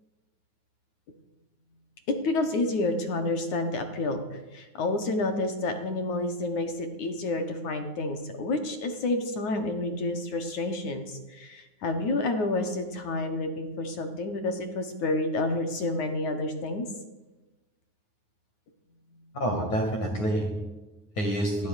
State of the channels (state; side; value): late; right; 9.5 ms